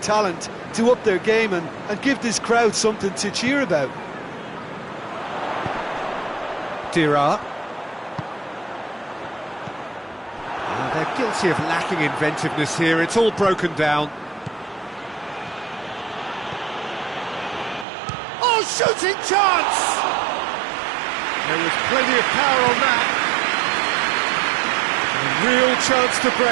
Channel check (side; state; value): left; drops out; at 17.9 s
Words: to up their game and give this crowd something to cheer about. Dira. They're guilty of lacking inventiveness here. It's all broken down. Oh, shooting chance! There was plenty of power on that. A real chance to